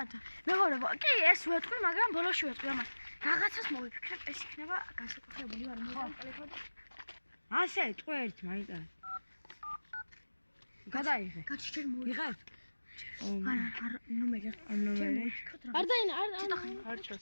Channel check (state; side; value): inverted; both; correlation -1.00